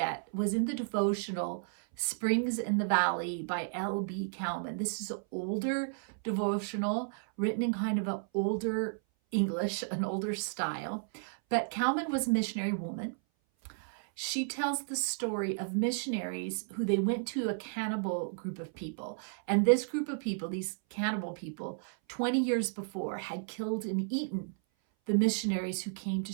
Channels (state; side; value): silent; left; 56 dB below the other